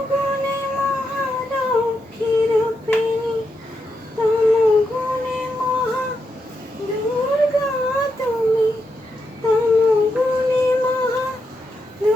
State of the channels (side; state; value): both; normal; correlation 0.83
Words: মহালক্ষ্মী রূপিণী তমগুণে মহা দুর্গা তুমি তমগুণে মহা